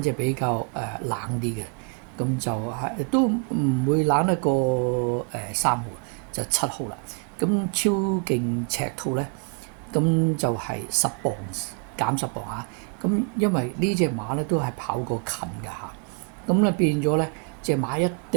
隻比較冷啲嘅，咁就係都唔會冷得過3號，就7號啦。咁超勁赤兔咧，咁就係10磅減10磅嚇。咁因為呢隻馬咧都係跑過近㗎嚇。咁咧變咗咧，隻馬一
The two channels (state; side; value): quieter; left; 37.9 dB